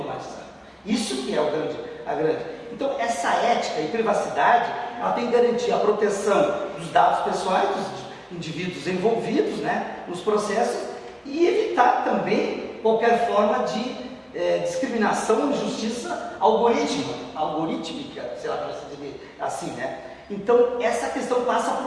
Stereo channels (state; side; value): identical; both; correlation 1.00